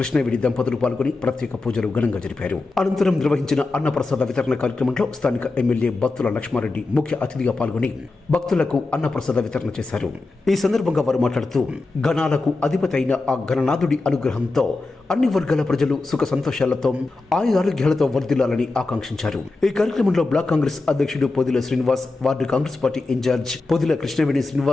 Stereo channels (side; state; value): right; quieter; 3.5 dB